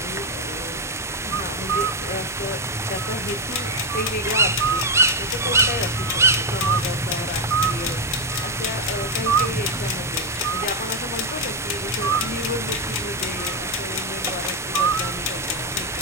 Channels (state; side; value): normal; both; correlation 0.04